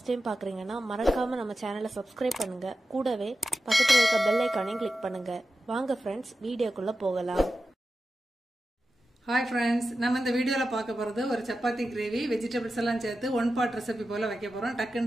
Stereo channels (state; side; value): normal; both; correlation 0.92